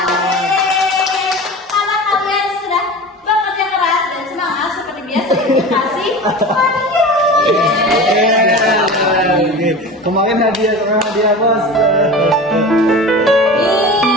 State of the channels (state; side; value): normal; both; correlation 0.33